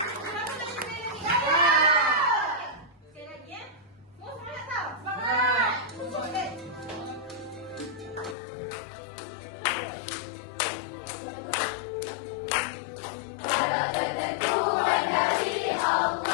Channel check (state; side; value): drops out; right; at 8.3 s